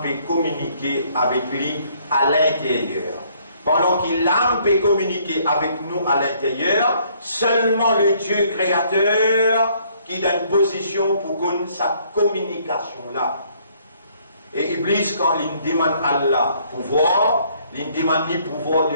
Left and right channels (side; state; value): both; inverted; correlation -0.64